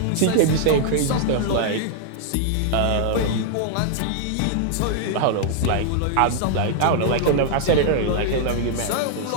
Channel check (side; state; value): both; different; correlation -0.01